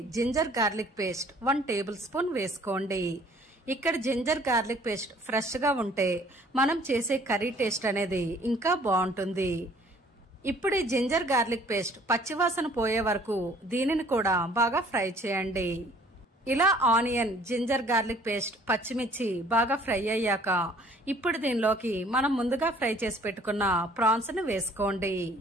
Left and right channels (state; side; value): normal; both; correlation 0.56